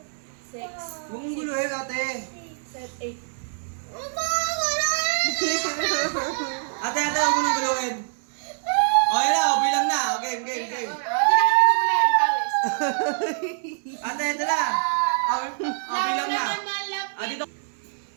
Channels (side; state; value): left; silent; 60 dB below the other